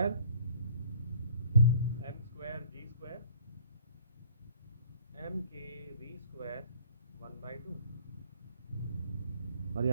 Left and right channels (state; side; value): inverted; both; correlation -0.54